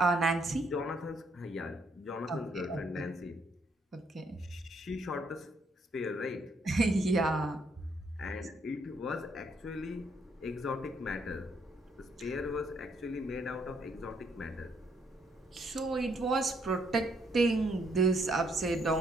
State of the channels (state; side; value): normal; both; correlation 0.71